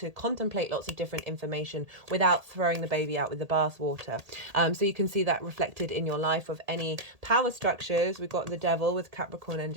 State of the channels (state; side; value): late; left; 1.8 ms